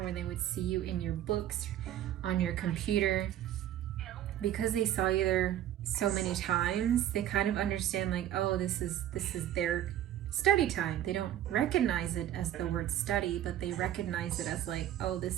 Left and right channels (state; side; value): quieter; left; 11.9 dB